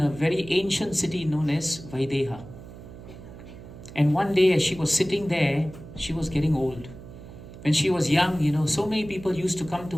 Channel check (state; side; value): noise; right; hum, 15 dB below the sound